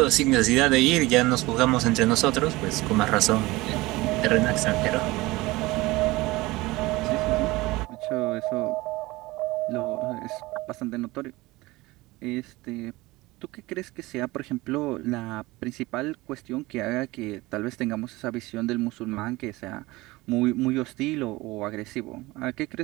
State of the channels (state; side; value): quieter; left; 20.7 dB